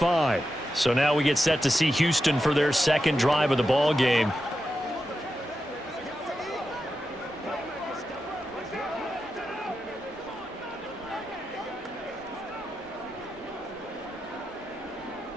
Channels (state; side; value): normal; both; correlation 0.89